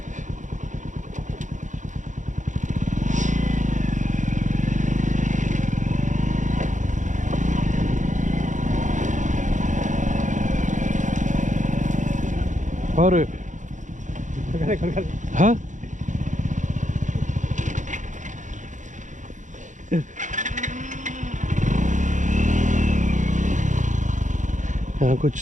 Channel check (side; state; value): left; late; 0.36 ms